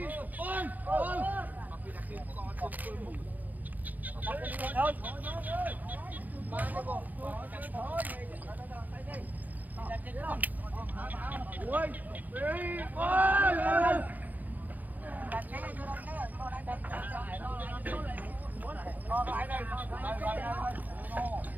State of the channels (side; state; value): left; late; 0.082 ms